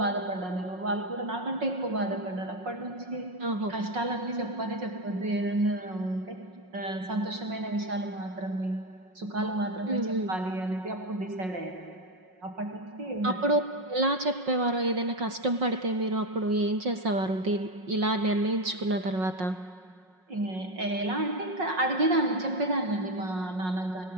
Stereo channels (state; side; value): late; left; 5.5 ms